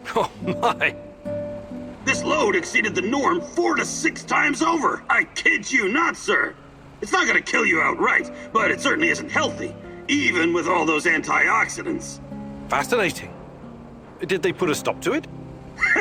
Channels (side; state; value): both; identical; correlation 1.00